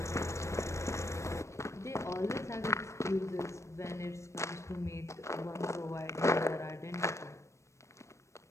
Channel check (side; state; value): right; late; 0.14 ms